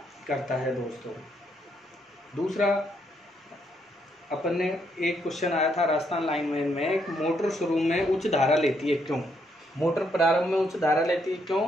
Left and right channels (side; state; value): both; normal; correlation 0.75